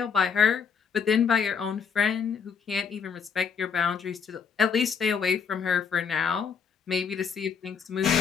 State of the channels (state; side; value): quieter; right; 6.5 dB